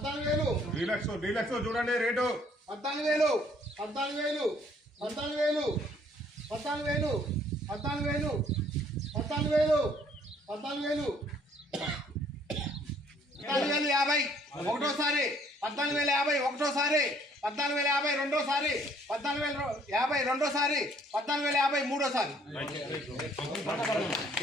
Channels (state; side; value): normal; both; correlation 0.61